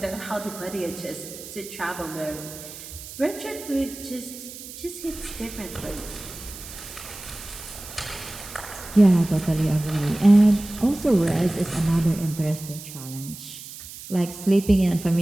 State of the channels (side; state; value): right; noise; hiss, 13 dB below the sound